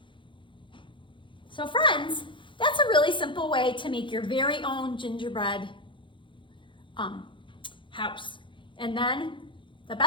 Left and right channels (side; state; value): right; late; 0.24 ms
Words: So friends, that's a really simple way to make your very own gingerbread house. And then the